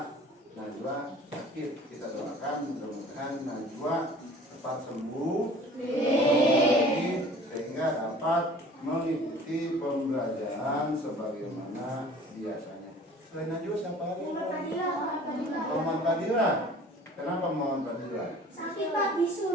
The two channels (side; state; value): both; normal; correlation 0.47